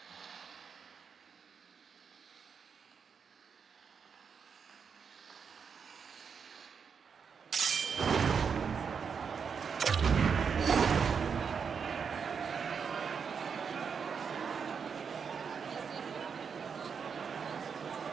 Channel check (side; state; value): left; quieter; 6.3 dB